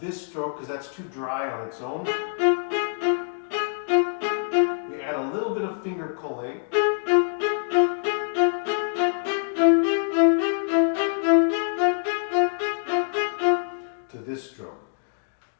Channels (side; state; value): right; silent; 62 dB below the other